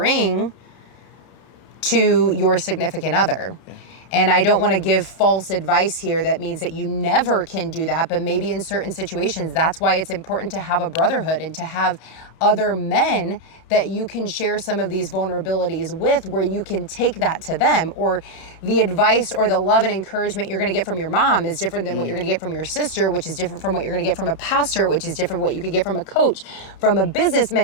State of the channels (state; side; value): late; right; 31 ms